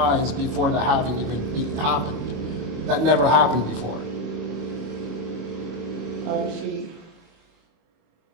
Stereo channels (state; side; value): late; left; 25 ms